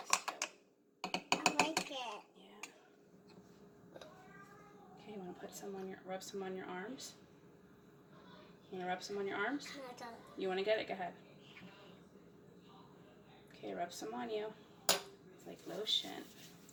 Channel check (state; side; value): identical; both; correlation 1.00